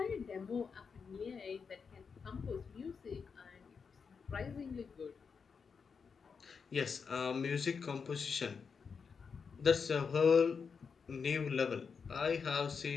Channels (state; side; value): quieter; right; 5.8 dB